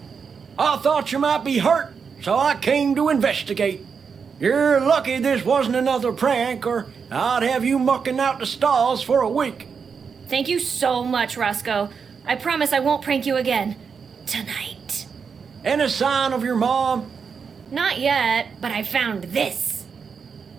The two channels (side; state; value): left; quieter; 6.0 dB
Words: I thought you might be hurt, so I came to investigate. You're lucky this wasn't another prank, or I'd have you mucking out the stalls for a week. Thank you so much, Roscoe. I promise I won't prank you again. Tonight. Any sign of your mom? Not yet, but I found this.